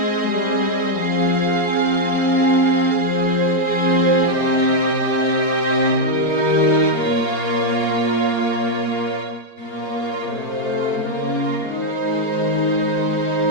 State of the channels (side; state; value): right; late; 4.4 ms